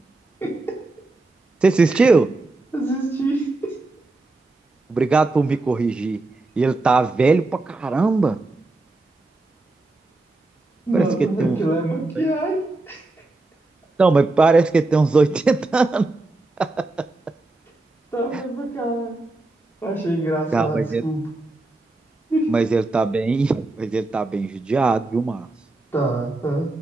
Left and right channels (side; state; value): left; quieter; 3.1 dB